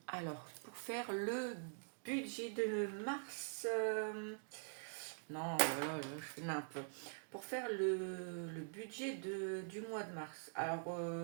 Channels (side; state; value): left; silent; digital silence